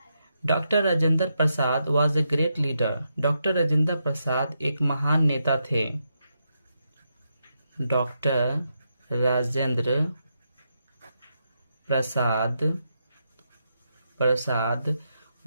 Doctor Rajendra Prasad was a great leader, doctor Rajendra Prasad एक महान नेता थे। Doctor Rajendra Prasad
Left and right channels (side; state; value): both; inverted; correlation -0.83